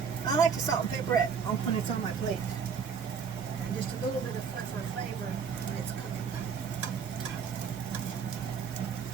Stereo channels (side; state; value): left; quieter; 6.4 dB